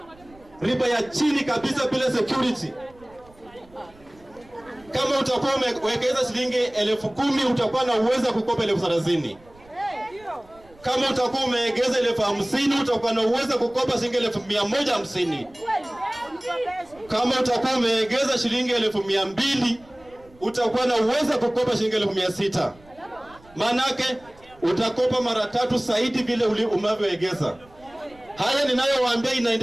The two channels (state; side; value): noise; right; rumble, 27 dB below the sound